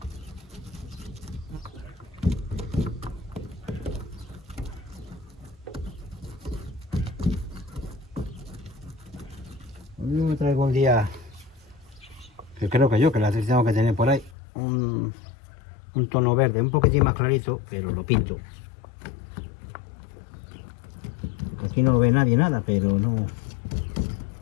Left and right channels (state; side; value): drops out; right; at 14.4 s